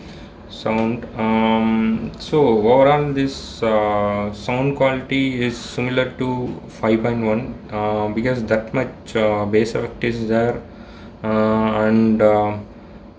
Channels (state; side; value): identical; both; correlation 1.00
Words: sound. So overall, this sound quality is similar to 5.1 because that much bass effect is there, and